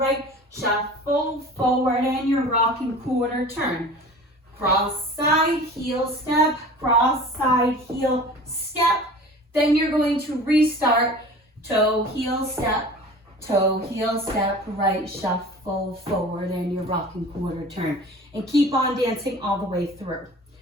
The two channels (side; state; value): both; normal; correlation 0.41